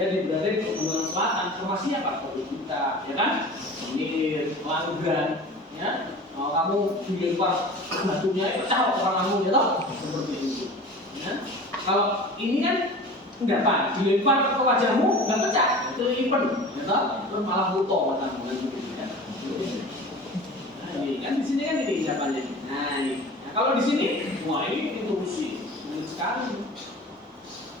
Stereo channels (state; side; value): normal; both; correlation 0.38